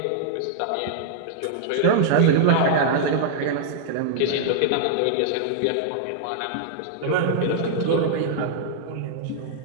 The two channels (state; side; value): different; both; correlation -0.01